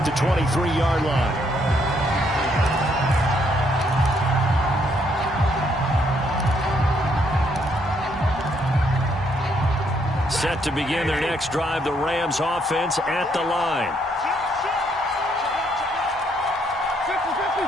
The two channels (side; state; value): both; normal; correlation 0.71